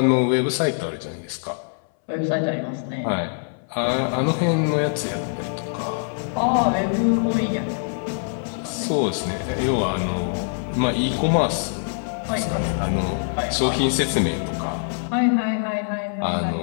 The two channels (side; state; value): right; silent; 63 dB below the other